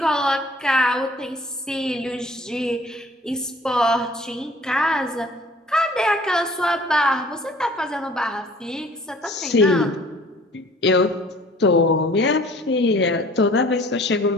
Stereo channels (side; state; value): both; normal; correlation 0.52